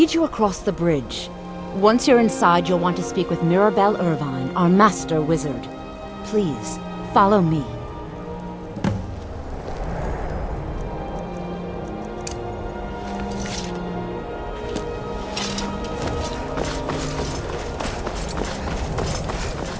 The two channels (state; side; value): identical; both; correlation 1.00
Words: you across the bridge. Once you're inside, you'll want to speak with Mirabelle Irvine, our master wizard. Please, follow me.